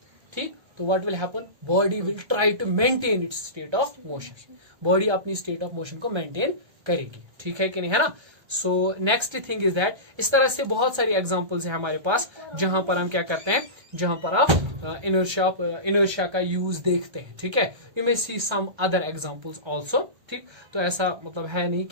ठीक, तो what will happen, body will try to maintain its state of motion, body अपनी स्टेट ऑफ मोशन को मेंटेन करेगी, ठीक है कि नहीं, है ना। So next thing is that, इस तरह से बहुत सारी एग्जांपल्स हैं हमारे पास जहां पर हम क्या करते हैं, जहां पर आप इनर्शिया का यूज देखते हैं, ठीक है। You may see some other examples also, ठीक। तो ऐसा मतलब है नहीं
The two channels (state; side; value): late; left; 1.3 ms